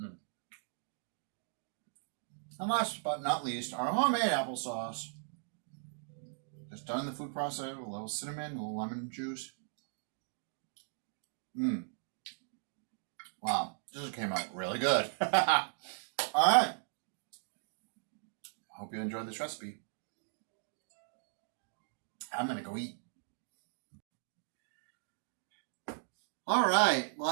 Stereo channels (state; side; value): silent; left; digital silence